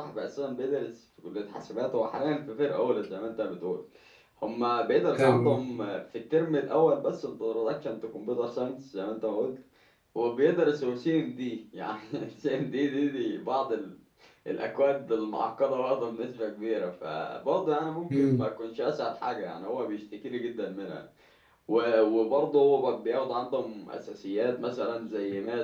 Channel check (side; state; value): both; identical; correlation 1.00